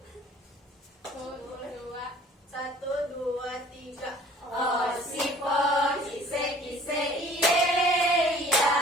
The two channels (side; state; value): both; normal; correlation 0.51